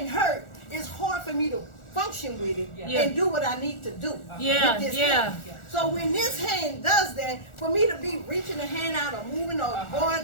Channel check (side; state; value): right; late; 1.4 ms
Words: hurt, it's hard for me to function with it and do what I need to do with this hand. So when this hand does that, for me to be reaching the hand out or moving or